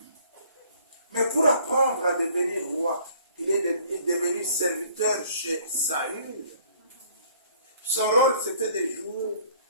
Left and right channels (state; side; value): inverted; both; correlation -0.58